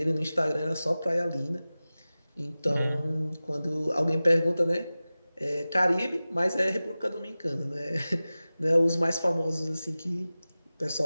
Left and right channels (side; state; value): both; inverted; correlation -0.97